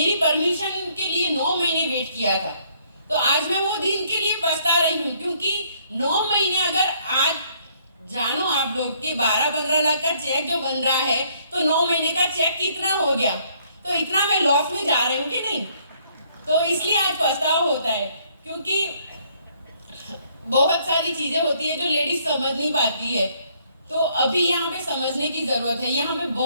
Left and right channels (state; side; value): inverted; both; correlation -0.65